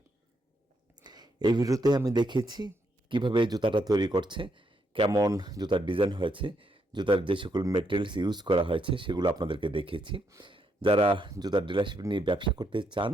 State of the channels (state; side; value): normal; both; correlation 0.77